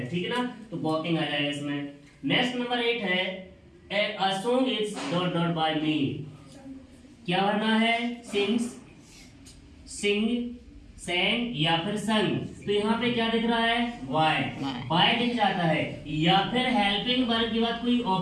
ठीक है ना। तो वॉकिंग आ जाएगा इसमें। नेक्स्ट नंबर 8 है a song is dot dot by me. क्या भरना है, सिंग्स, सिंग, sang या फिर संग। तो यहाँ पे क्या दिख रहा है, वाई दिख जाता है। या फिर हेल्पिंग वर्ब के बाद कोई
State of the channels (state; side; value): identical; both; correlation 1.00